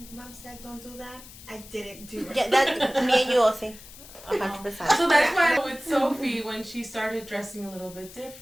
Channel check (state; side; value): noise; left; hiss, 18 dB below the sound